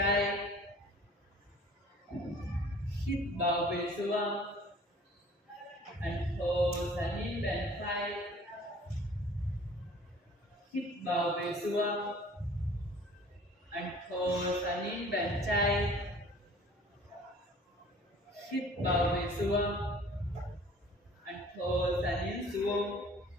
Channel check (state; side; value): normal; both; correlation 0.50